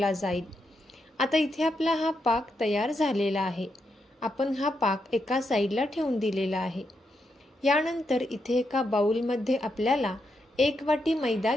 जाईल। आता इथे आपला हा पाक तयार झालेला आहे। आपण हा पाक एका साईडला ठेवून दिलेला आहे। यानंतर इथे एका बाउलमध्ये आपल्याला 1 वाटी मैदा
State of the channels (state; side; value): normal; both; correlation 0.82